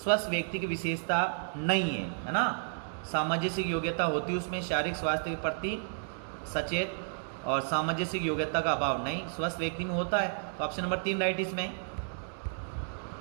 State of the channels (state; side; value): silent; left; digital silence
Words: व्यक्ति की विशेषता नहीं है ना, सामाजिक योग्यता होती है उसमें, शारीरिक स्वास्थ्य के प्रति सचेत और सामाजिक योग्यता का अभाव नहीं, स्वस्थ व्यक्ति में होता है, तो ऑप्शन नंबर 3 राइट इसमें।